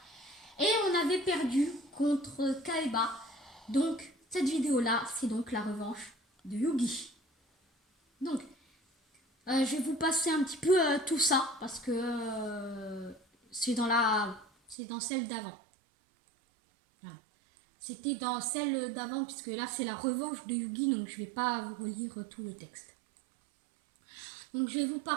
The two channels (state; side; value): drops out; left; at 14.8 s